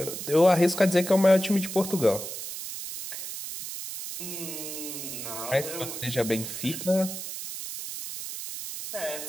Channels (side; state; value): right; noise; hiss, 8 dB below the sound